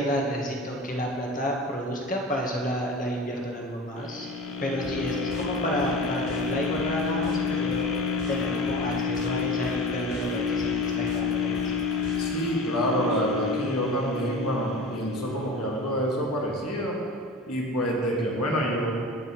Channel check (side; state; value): both; normal; correlation 0.34